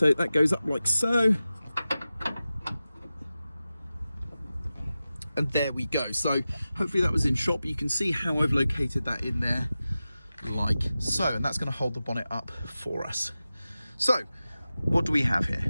that goes up like so, and there we go. So hopefully that was in shot, but you can see how I've located that in there like so, and that's going to hold the bonnet up for us. So what do we have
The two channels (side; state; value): both; inverted; correlation -0.94